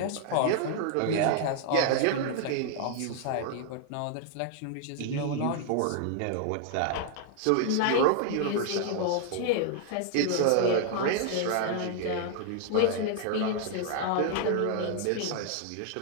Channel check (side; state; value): both; different; correlation 0.00